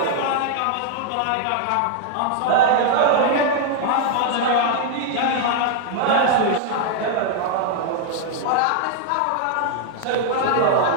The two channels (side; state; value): both; different; correlation -0.01